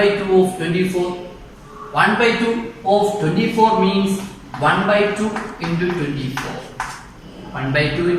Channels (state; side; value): identical; both; correlation 1.00